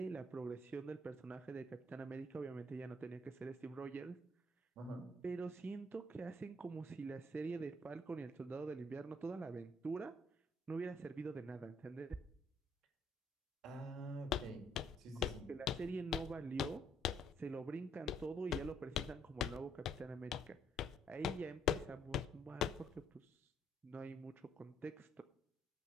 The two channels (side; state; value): both; normal; correlation 0.68